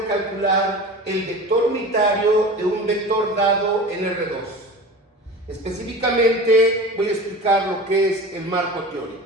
calcular el vector unitario de un vector dado en R2. Específicamente voy a explicar lo que es el marco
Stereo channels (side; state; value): both; normal; correlation 0.34